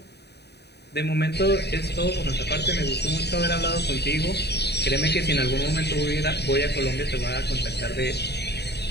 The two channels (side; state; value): right; late; 0.48 ms